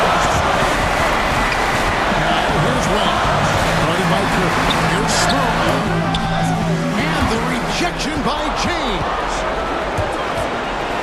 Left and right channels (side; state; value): both; identical; correlation 1.00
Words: Now here's Wells. Guarded by Curry. Here's Smoke. And the rejection by James.